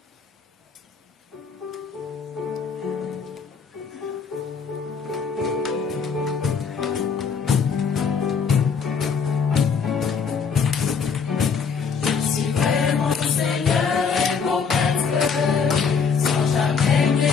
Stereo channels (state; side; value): quieter; right; 5.9 dB